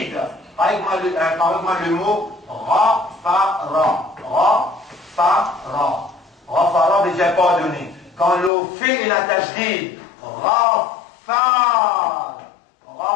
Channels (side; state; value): right; drops out; at 8.5 s